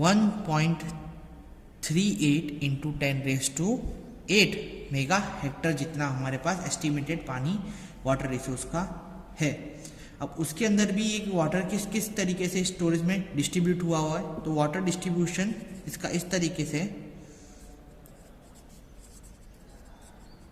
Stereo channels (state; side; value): identical; both; correlation 1.00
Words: इंटू 10⁸ मेगा हेक्टर जितना हमारे पास एस्टिमेटेड पानी वाटर रिसोर्स का है. अब उसके अंदर भी एक वाटर किस किस तरीके से स्टोरेज में डिस्ट्रीब्यूट हुआ है. तो वाटर डिस्ट्रीब्यूशन इसका इस तरीके से